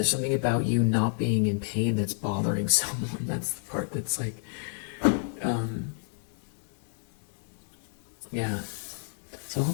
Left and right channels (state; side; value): silent; right; digital silence